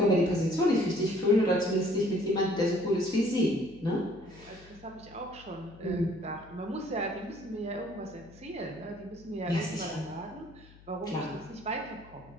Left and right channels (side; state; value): left; noise; hum, 23 dB below the sound